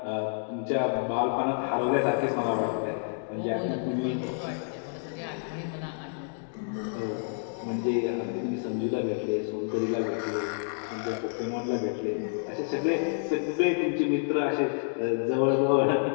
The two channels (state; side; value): silent; right; digital silence